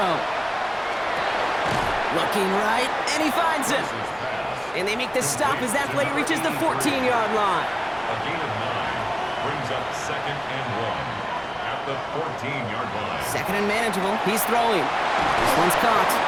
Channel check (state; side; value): identical; both; correlation 1.00